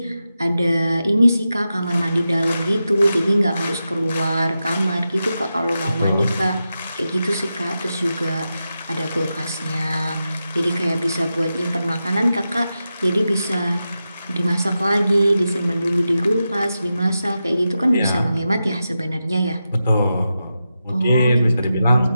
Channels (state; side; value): inverted; both; correlation -0.90